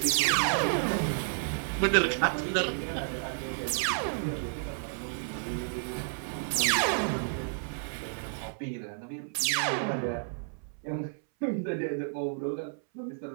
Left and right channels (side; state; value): left; silent; 57 dB below the other